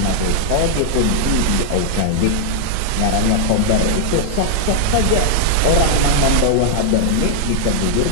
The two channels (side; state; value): both; different; correlation -0.01